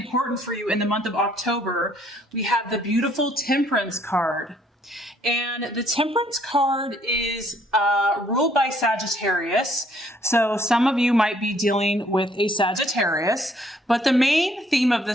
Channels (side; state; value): both; normal; correlation 0.64